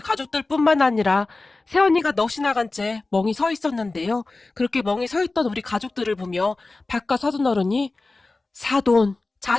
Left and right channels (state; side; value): quieter; right; 3.4 dB